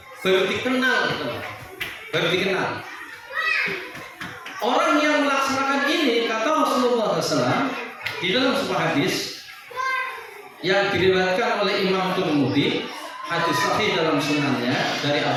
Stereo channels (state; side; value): identical; both; correlation 1.00